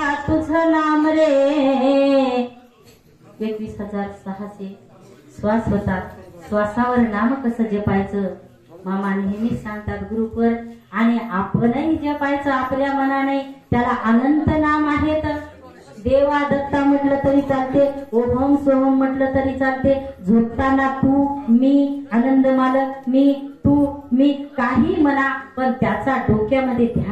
तुझं नाम रे. 21,600 श्वास होतात. श्वासावर नाम कसं जपायचं मामा नेहमी सांगतात ग्रुपवर. आणि आपणही जपायचं आपल्या मनाने. त्याला अनंत नाम आहेत. देवा दत्ता म्हटलं तरी चालते, ओम सोहम म्हटलं तरी चालते. झोपताना तू मी, आनंद मालक मी, तू मी, काही म्हणा, पण त्याचा डोक्यामध्ये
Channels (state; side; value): identical; both; correlation 1.00